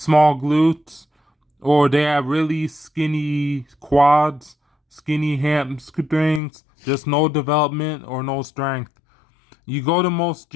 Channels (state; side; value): drops out; right; at 6.4 s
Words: glutes, or they have really skinny quads, skinny hamstrings, just no development or no strength. You go to most